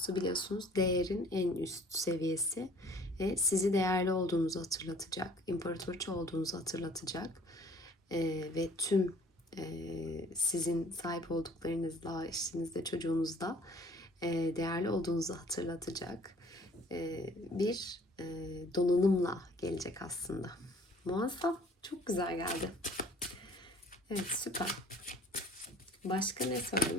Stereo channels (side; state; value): both; normal; correlation 0.54